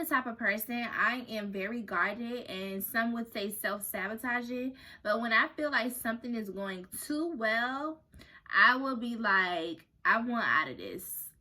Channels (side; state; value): both; identical; correlation 1.00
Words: type of person, I am very guarded, and some would say self-sabotaging. But when I feel like something is going too well, I will be like, I want out of this.